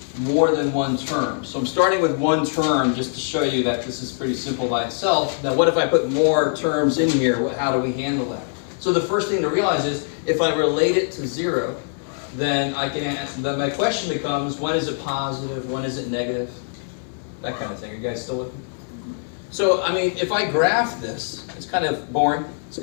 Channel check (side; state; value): right; silent; digital silence